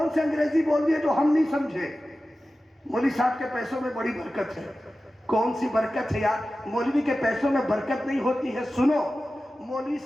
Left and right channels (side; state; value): both; normal; correlation 0.95